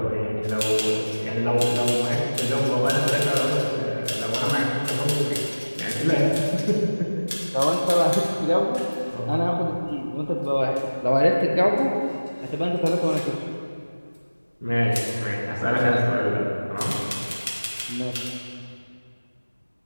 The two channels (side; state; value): both; inverted; correlation -1.00